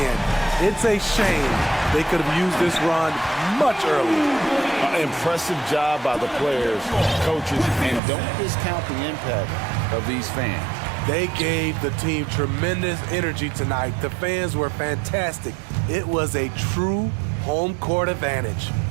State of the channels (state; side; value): drops out; left; at 8.0 s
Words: It's a shame they could have used this run much earlier. Impressive job by the players, coaches, and don't discount the impact of these fans. They gave the team tremendous energy tonight. The fans were fantastic. It was a true home court advantage.